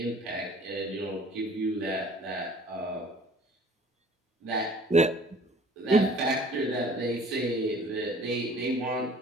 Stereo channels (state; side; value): normal; both; correlation 0.51